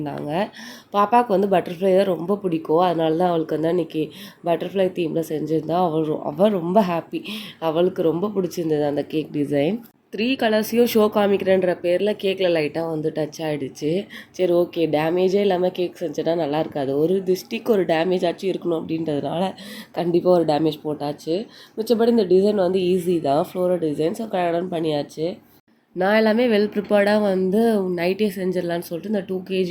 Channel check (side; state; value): both; identical; correlation 1.00